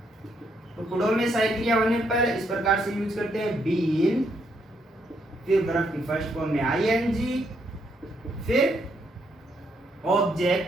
टुकड़ों में सही क्रिया होने पर इस प्रकार से यूज करते हैं, बीन, फिर वर्ब की फर्स्ट फॉर्म में आईएनजी, फिर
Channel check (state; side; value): normal; both; correlation 0.75